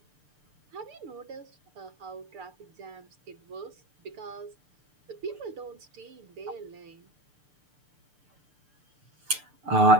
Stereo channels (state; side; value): late; left; 6.7 ms